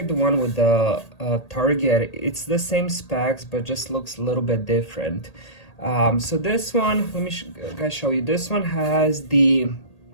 the one with the Target. It's the same specs, but just looks a little bit different. So this one, let me guys show you. This one has the,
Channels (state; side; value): late; right; 1.8 ms